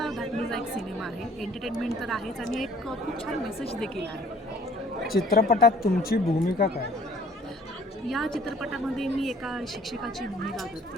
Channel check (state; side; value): normal; both; correlation 0.56